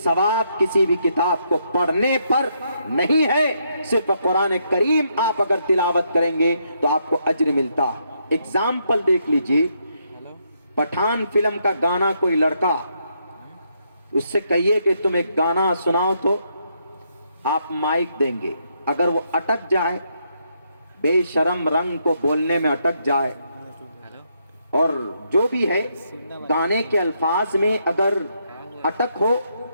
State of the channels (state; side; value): inverted; both; correlation -0.76